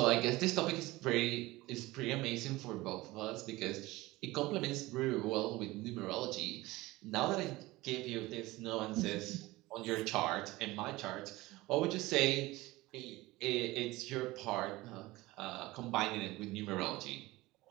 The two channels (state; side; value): quieter; left; 19.7 dB